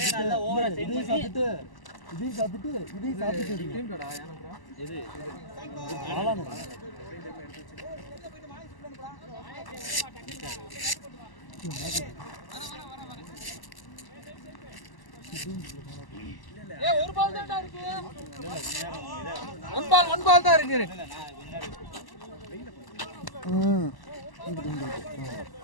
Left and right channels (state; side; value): late; right; 1.0 ms